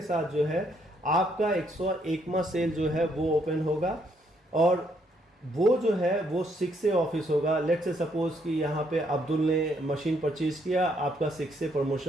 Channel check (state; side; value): normal; both; correlation 0.72